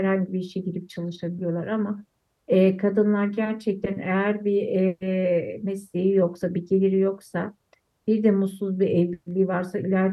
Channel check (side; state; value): both; identical; correlation 1.00